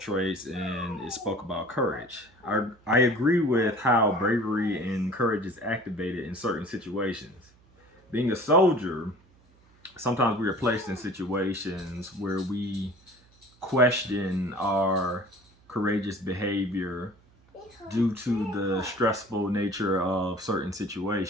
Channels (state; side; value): noise; right; hum, 30 dB below the sound